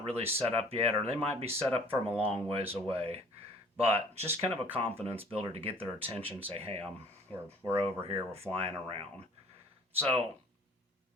set up yet, or they might be set up from a long ways away. But just kind of a confidence builder to get their attention, say, hey, we're over here, we're flying around. So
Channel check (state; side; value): normal; both; correlation 0.52